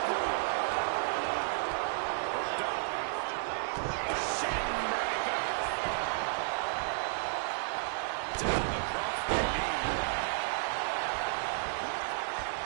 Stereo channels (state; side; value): silent; left; 56 dB below the other